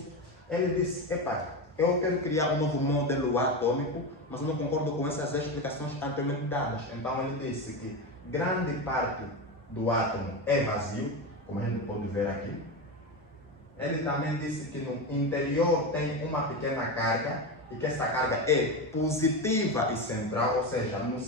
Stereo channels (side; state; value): both; normal; correlation 0.18